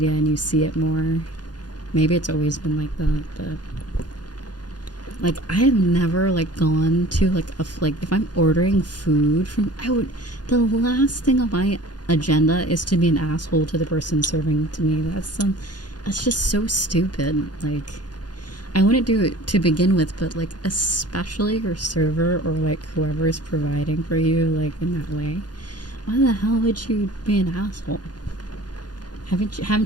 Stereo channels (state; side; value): late; right; 0.69 ms